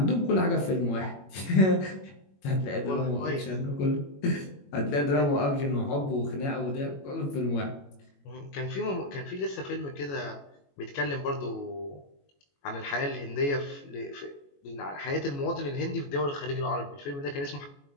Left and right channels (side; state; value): right; late; 21 ms